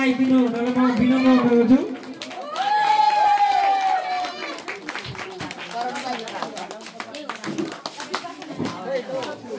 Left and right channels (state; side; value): identical; both; correlation 1.00